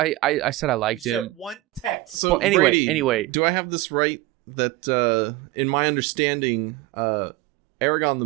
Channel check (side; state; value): left; quieter; 18.8 dB